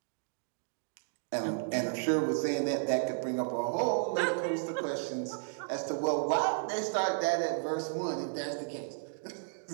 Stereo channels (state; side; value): silent; left; digital silence